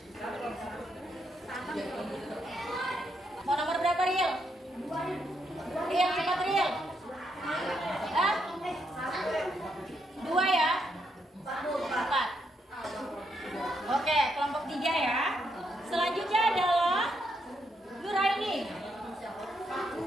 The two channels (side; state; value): both; normal; correlation 0.78